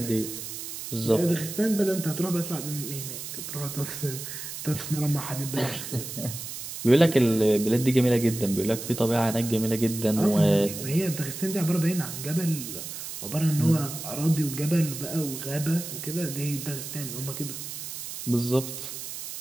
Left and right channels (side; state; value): right; noise; hiss, 8 dB below the sound